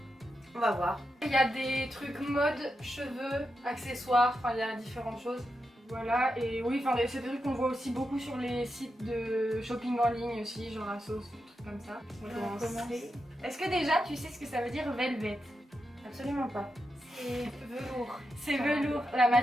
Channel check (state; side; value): normal; both; correlation 0.87